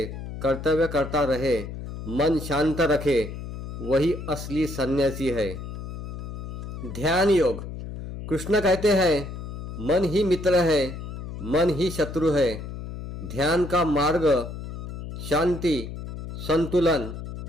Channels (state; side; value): noise; left; hum, 8 dB below the sound